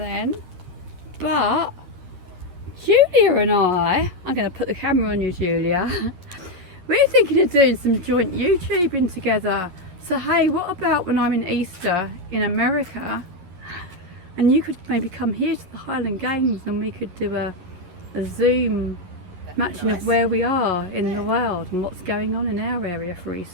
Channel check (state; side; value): late; left; 11 ms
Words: But Julia and I'm going to put the camera on you, Julia. We're thinking of doing some joint YouTubing together. So hey, what about when I'm in Easter in America and you could maybe come here to the Highland Games and we could do a Zoom matching of where we are in the world and what's going on in our area for